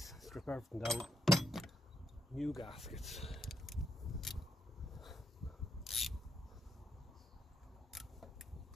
Strip everything down. New gaskets.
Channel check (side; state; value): both; normal; correlation 0.78